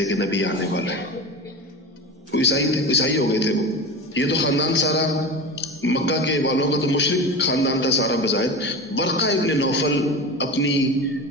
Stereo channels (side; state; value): both; normal; correlation 0.28